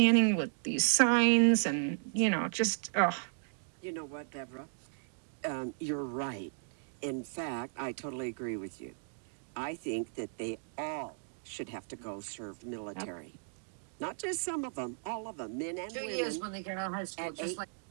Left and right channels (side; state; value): left; silent; digital silence